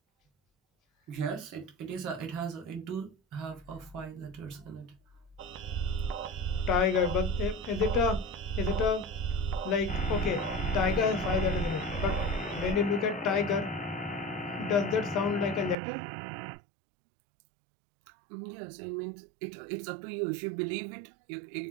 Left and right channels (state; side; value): drops out; left; at 15.8 s